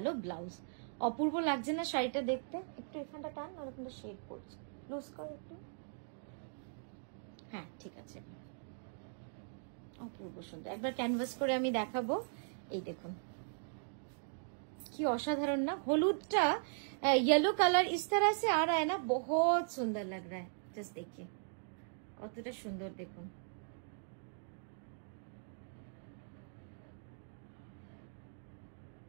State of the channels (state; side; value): silent; left; digital silence